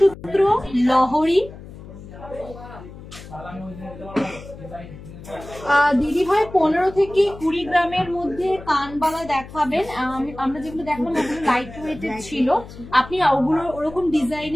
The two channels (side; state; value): left; noise; hum, 15 dB below the sound